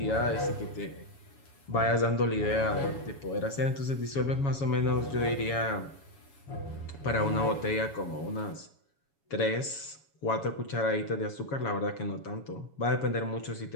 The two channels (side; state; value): right; late; 7.1 ms